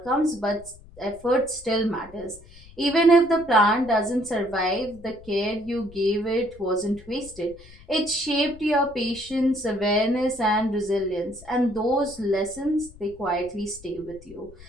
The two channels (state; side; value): noise; left; rumble, 21 dB below the sound